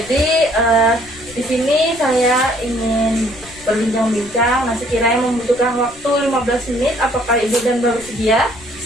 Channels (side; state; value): left; noise; rumble, 21 dB below the sound